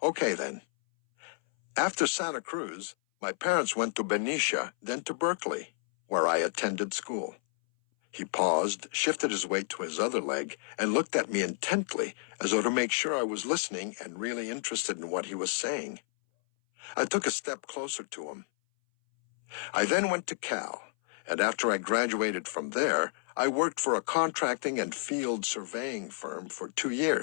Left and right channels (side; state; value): right; silent; 57 dB below the other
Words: okay then. After Santa Cruz, my parents went to Benicia, then to Berkeley, where I attended school." He paused, shifted his weight to his other leg, and looked at me intently, as though to make sure I was listening and really interested in what he was saying. I took a step closer to him. "I then went to Cal, and after I graduated from there, I worked for a contracting and field surveying firm for 2